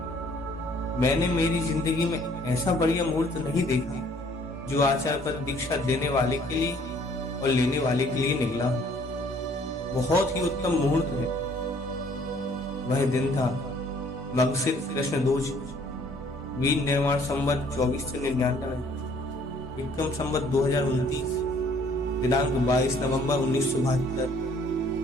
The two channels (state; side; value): normal; both; correlation 0.59